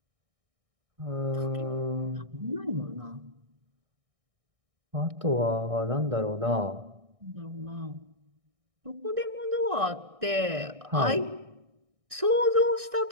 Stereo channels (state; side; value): late; left; 1.6 ms